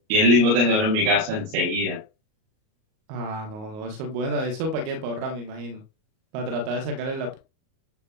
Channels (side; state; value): left; late; 38 ms